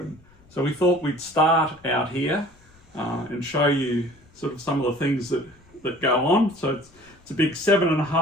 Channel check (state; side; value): noise; left; rumble, 29 dB below the sound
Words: So we thought we'd start out here and show you sort of some of the things that go on. So it's a big